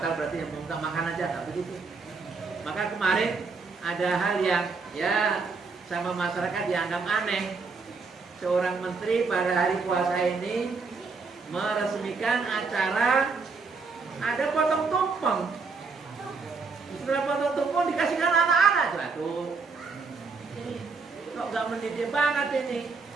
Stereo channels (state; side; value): quieter; left; 4.5 dB